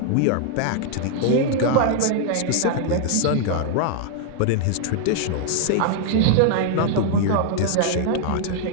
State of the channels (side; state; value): both; different; correlation 0.00